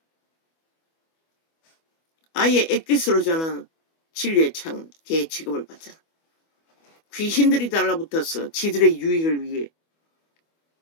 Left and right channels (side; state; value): right; late; 25 ms